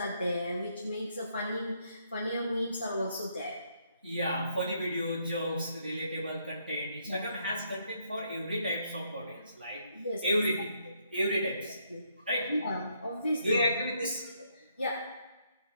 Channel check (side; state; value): both; inverted; correlation -0.73